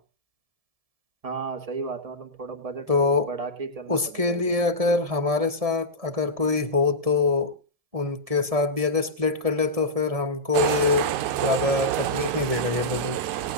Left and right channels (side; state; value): left; late; 1.7 ms